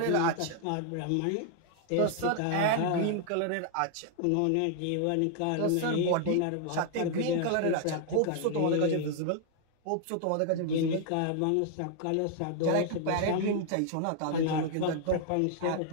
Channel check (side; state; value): both; different; correlation 0.00